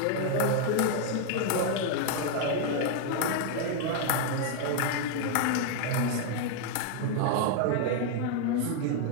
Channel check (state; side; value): different; both; correlation 0.00